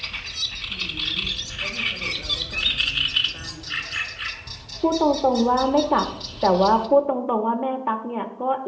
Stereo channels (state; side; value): identical; both; correlation 1.00